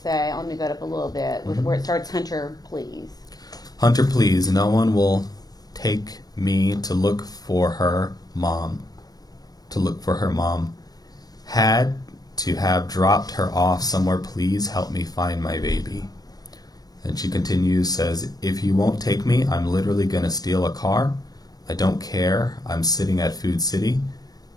Let me go up a little bit with where it starts. Hunter, please. Hunter, please. No one will take me to look for her mom. Had to have dropped her off somewhere. Please help me find my baby. And she continues, says, if you won't take me, I'm literally going to steal a car. I don't care. I'm sitting at Food City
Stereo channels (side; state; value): right; late; 0.19 ms